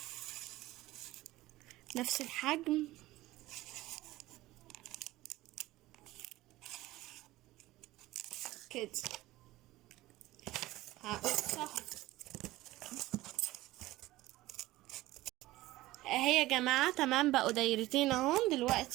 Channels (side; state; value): left; quieter; 17.5 dB